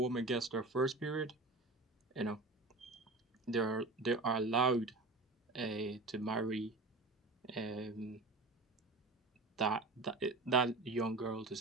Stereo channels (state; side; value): quieter; left; 3.2 dB